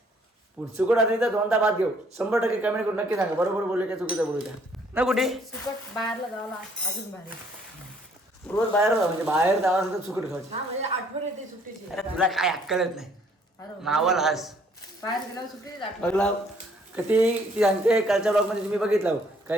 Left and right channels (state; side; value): normal; both; correlation 0.63